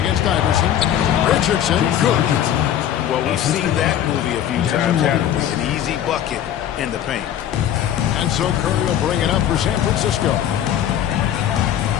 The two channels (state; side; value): quieter; right; 10.6 dB